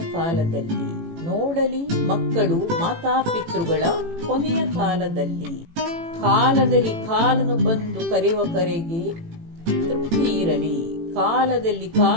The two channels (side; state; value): left; late; 18 ms